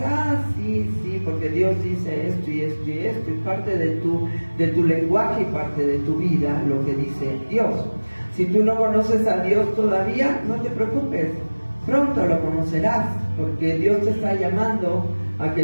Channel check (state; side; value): inverted; both; correlation -1.00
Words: sí, porque Dios dice esto y esto y esto, y parte de tu lenguaje y parte de tu vida lo que dice Dios. Si tú no conoces a Dios todavía, no te preocupes, pronto lo conocerás, porque Dios te está llamando a que